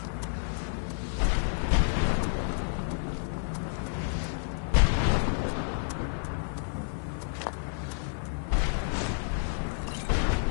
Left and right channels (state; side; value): silent; right; digital silence